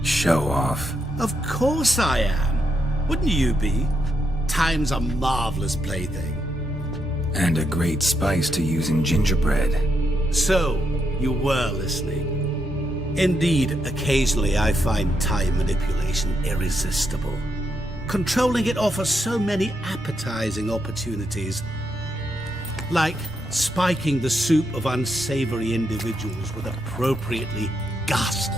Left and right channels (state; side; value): normal; both; correlation 0.80